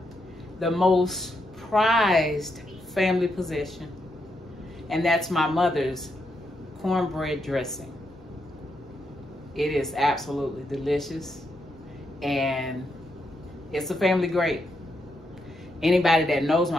the most prized family possession, and that's my mother's cornbread dressing. It is absolutely delicious, and it's a family great. Anybody that knows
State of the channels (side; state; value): both; normal; correlation 0.81